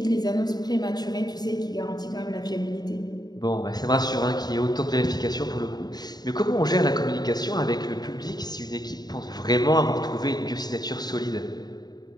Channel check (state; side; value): late; right; 0.20 ms